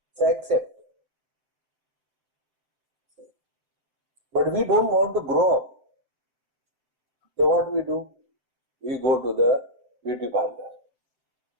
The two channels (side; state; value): left; late; 7.3 ms